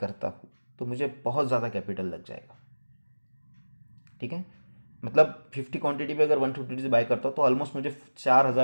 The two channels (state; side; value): inverted; both; correlation -1.00